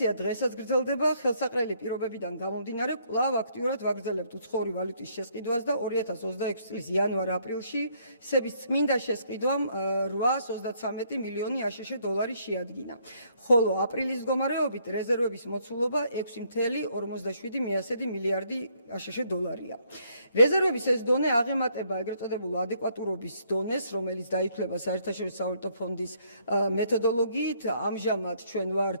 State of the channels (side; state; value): both; inverted; correlation -0.68